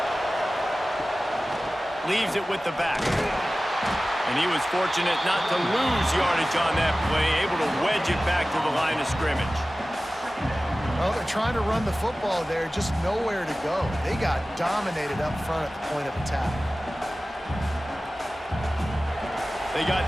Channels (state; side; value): normal; both; correlation 0.96